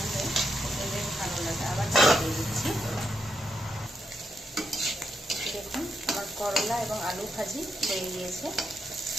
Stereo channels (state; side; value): normal; both; correlation 0.82